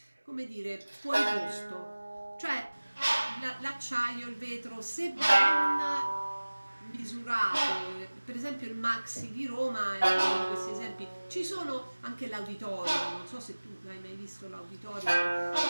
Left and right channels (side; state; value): both; inverted; correlation -1.00